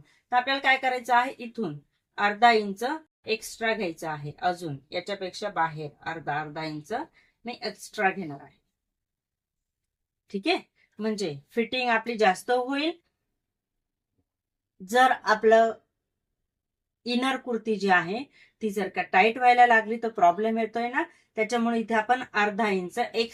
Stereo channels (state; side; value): identical; both; correlation 1.00